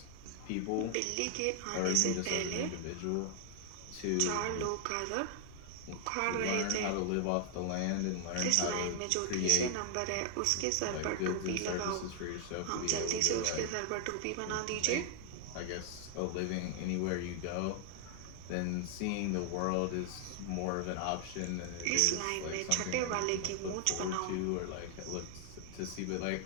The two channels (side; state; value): both; different; correlation 0.00